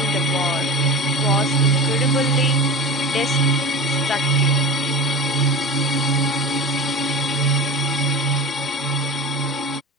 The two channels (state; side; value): normal; both; correlation 0.30